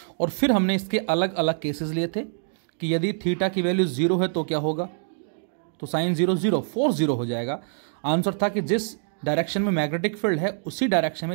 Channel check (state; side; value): silent; left; digital silence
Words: और फिर हमने इसके अलग अलग केसेस लिए थे कि यदि थीटा की वैल्यू 0 है तो क्या होगा, तो साइन 0 0 फोर्स 0 हो जाएगा। आंसर था कि जिस डायरेक्शन में मैग्नेटिक फील्ड है उसी डायरेक्शन में